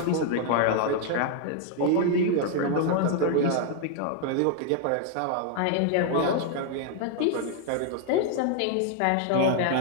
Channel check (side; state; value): both; different; correlation 0.00